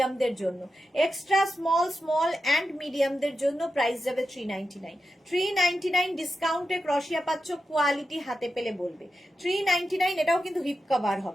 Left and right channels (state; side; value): normal; both; correlation 0.89